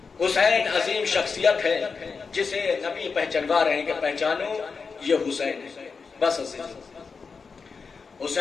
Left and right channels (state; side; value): quieter; right; 5.1 dB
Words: حسین عظیم شخصیت ہے جسے نبی پہچانوا رہے ہیں کہ پہچانو یہ حسین ہے۔ بس